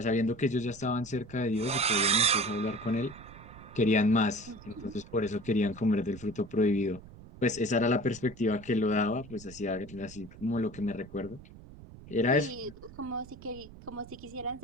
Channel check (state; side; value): noise; right; rumble, 18 dB below the sound